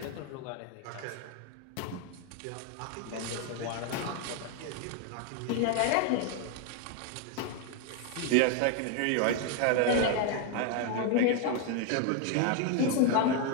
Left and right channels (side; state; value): both; different; correlation 0.01